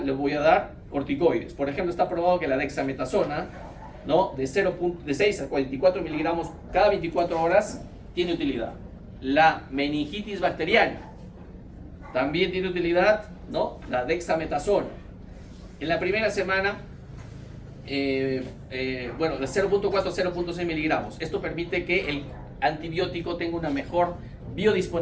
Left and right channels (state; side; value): identical; both; correlation 1.00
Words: le voy a dar corticoides. Por ejemplo, está probado que la dexametasona, ¿no? de 6 a 44 miligramos cada 24 horas tiene utilidad. La meningitis bacteriana también tiene utilidad, ¿no? La dexametasona. En la primera semana, de 0.4 a 0.6 miligramos. Esto permite que el antibiótico tenga una mejor